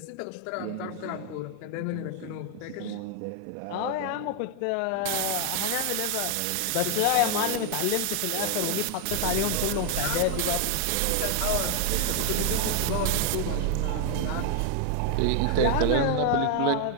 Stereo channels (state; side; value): different; both; correlation 0.00